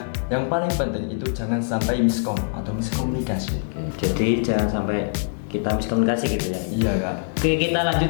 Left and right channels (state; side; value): silent; right; digital silence